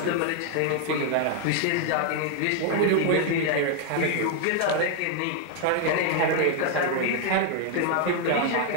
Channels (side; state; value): both; different; correlation 0.00